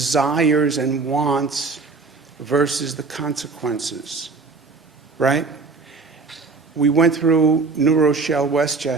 and wants versus the consequences, right? We went through New Rochelle,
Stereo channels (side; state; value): left; quieter; 4.2 dB